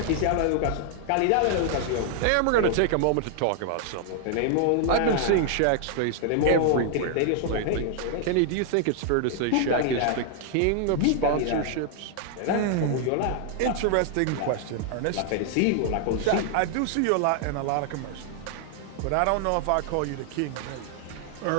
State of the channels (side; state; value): both; different; correlation 0.00